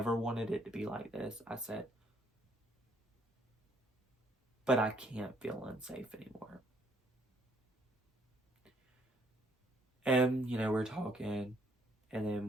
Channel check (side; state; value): both; normal; correlation 0.66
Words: wanted it to be like this. I said, but I can't feel unsafe anymore. And, you know, we're talking, and then